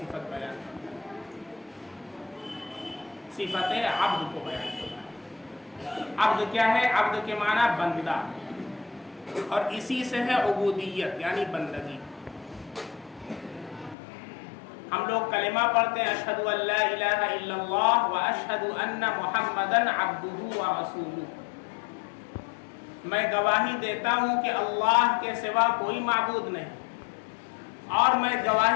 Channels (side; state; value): right; drops out; at 14.0 s